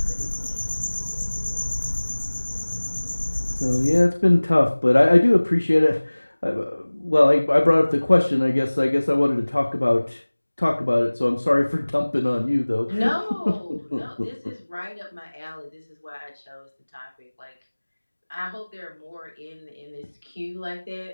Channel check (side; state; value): both; inverted; correlation -1.00